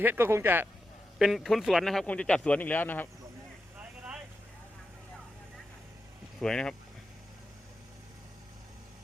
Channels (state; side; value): normal; both; correlation 0.88